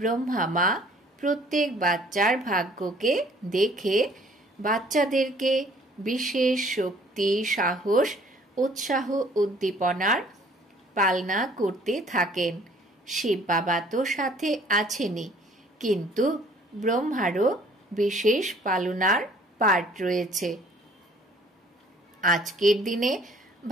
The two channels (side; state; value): both; normal; correlation 0.56